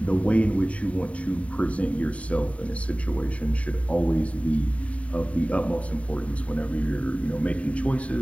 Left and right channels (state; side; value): late; right; 0.065 ms